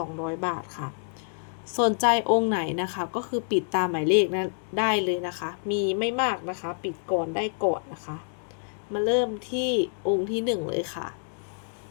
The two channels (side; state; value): right; silent; digital silence